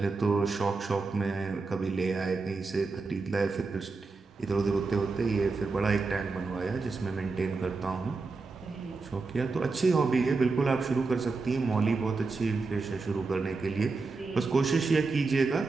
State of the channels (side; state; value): left; quieter; 4.1 dB